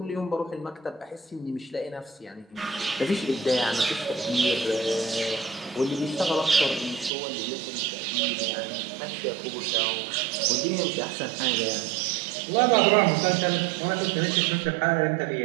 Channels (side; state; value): left; drops out; at 7.1 s